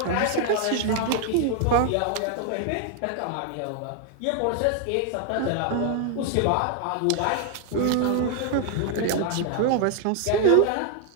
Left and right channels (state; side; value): different; both; correlation 0.00